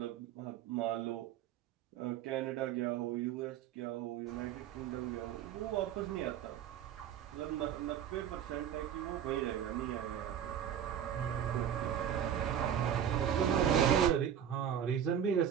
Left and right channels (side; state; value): left; quieter; 9.3 dB